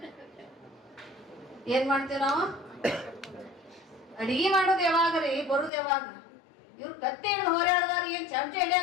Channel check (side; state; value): right; drops out; at 5.7 s